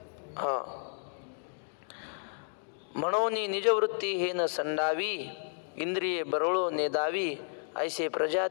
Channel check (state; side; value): silent; right; digital silence